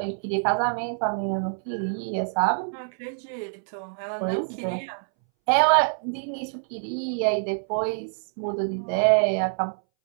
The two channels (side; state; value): left; silent; 61 dB below the other